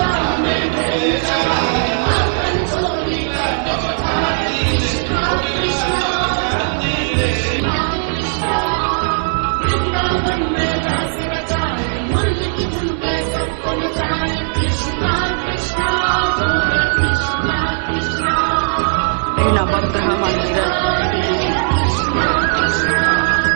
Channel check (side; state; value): left; silent; 63 dB below the other